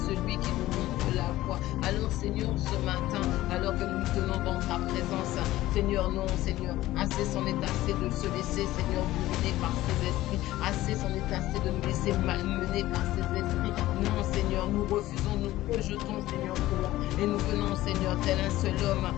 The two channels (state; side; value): quieter; right; 16.0 dB